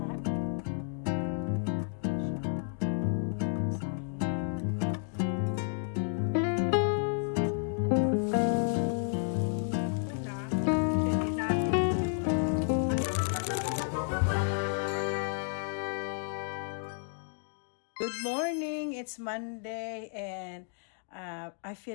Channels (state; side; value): silent; right; 57 dB below the other